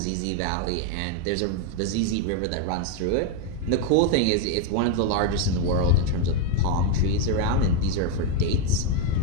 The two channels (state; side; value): different; both; correlation 0.01